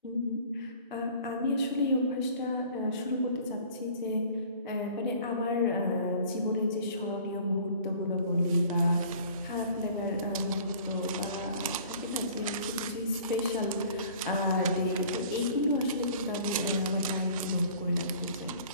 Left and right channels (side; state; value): both; inverted; correlation -0.49